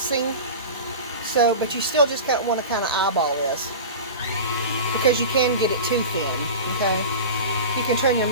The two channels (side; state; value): both; inverted; correlation -0.30